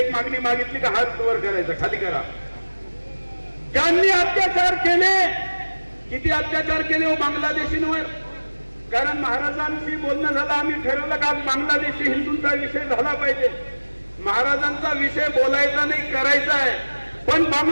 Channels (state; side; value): inverted; both; correlation -1.00